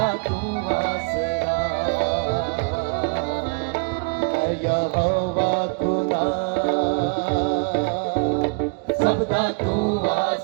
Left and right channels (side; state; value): left; quieter; 35.2 dB